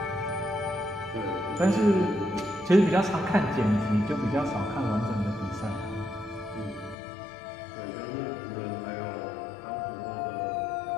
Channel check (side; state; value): right; drops out; at 7.0 s